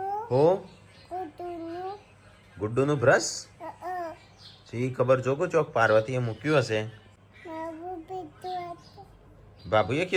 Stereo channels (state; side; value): identical; both; correlation 1.00